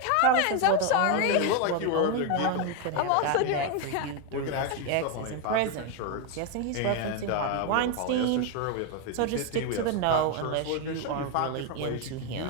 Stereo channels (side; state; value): both; different; correlation 0.01